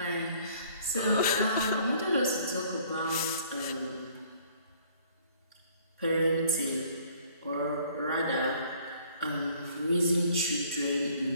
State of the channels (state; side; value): inverted; both; correlation -0.58